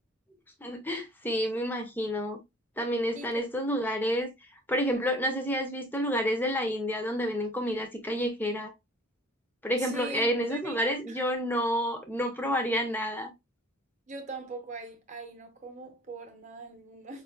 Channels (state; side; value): normal; both; correlation 0.50